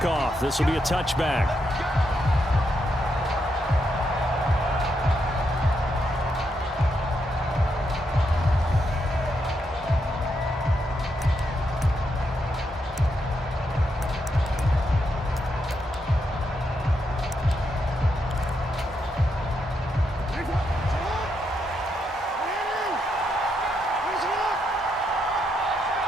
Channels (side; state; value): both; normal; correlation 0.80